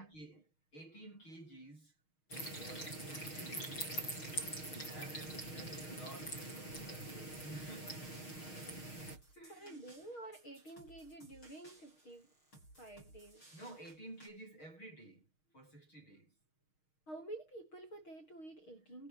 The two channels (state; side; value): late; right; 6.4 ms